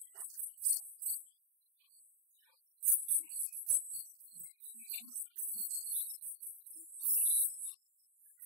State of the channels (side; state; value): left; late; 40 ms